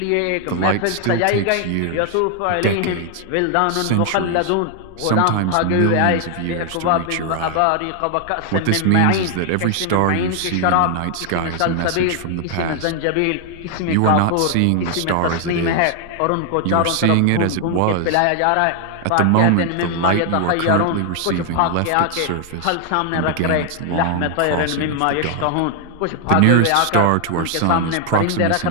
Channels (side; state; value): both; different; correlation 0.00